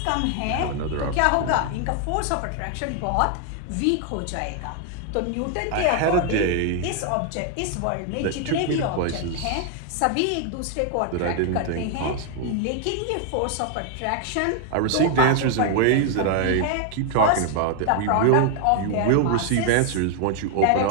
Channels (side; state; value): both; different; correlation 0.00